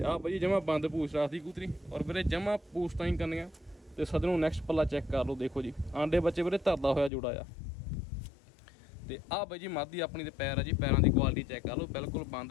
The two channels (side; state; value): right; drops out; at 7.1 s